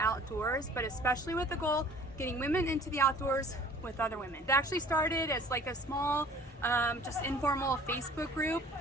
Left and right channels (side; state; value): both; normal; correlation 0.50